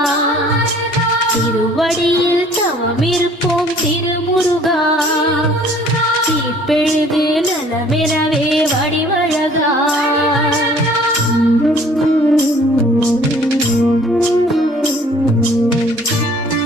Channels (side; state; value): both; normal; correlation 0.55